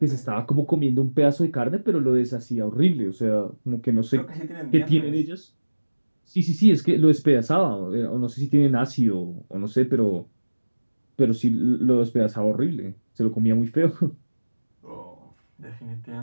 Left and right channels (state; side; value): inverted; both; correlation -1.00